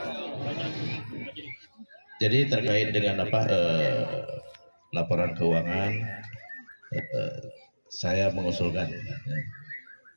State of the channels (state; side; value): inverted; both; correlation -1.00